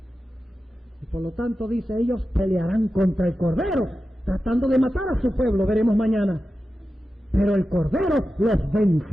Y por lo tanto dice: ellos pelearán contra el Cordero, tratando de matar a su pueblo, veremos mañana. Pero el Cordero los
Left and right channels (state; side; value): normal; both; correlation 0.92